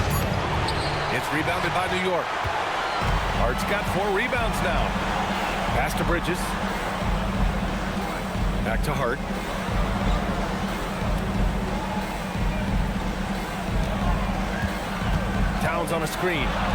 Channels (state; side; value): identical; both; correlation 1.00